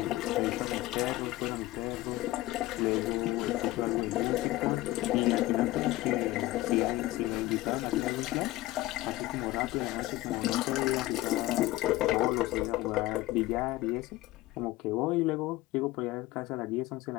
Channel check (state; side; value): quieter; right; 17.6 dB